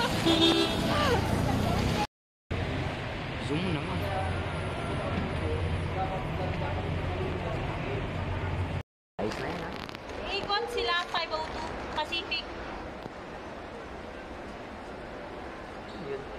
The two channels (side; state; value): both; identical; correlation 1.00